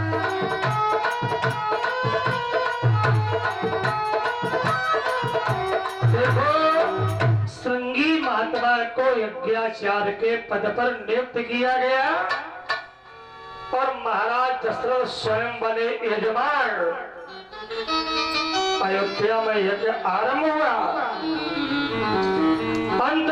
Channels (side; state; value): both; identical; correlation 1.00